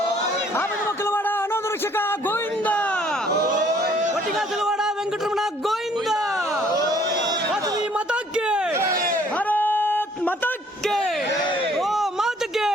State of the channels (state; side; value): normal; both; correlation 0.60